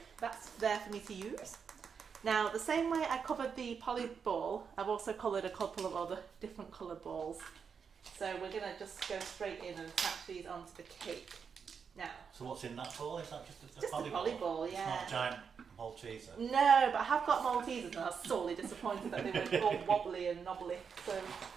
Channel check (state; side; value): quieter; left; 6.3 dB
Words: that's there for me to use. Now, the same way I covered the poly ball, I've also coloured a couple of other different coloured balls. So we're going to just go straight in and attach these onto the cake. Now. So what's in that ball? Is that just a poly ball? Yeah. It's not a giant Malteser? No, but I have got Maltesers and I was sorely disappointed that they were all wobbly and knobbly. So